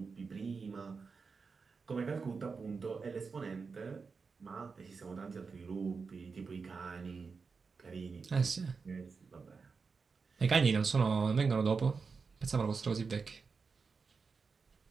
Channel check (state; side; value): quieter; left; 5.0 dB